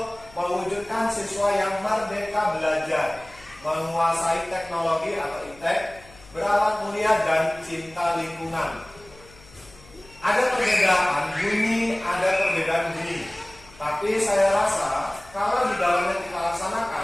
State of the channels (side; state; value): left; noise; hum, 24 dB below the sound